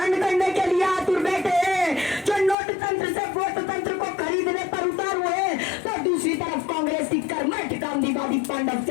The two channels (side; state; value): right; drops out; at 2.6 s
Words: करने के लिए आतुर बैठे हैं, जो नोट तंत्र से वोट तंत्र को खरीदने पर उतार हुए। तो दूसरी तरफ कांग्रेस की कर्मठ गांधीवादी पांडव